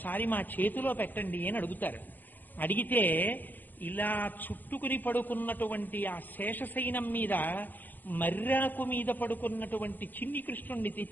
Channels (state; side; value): late; right; 0.086 ms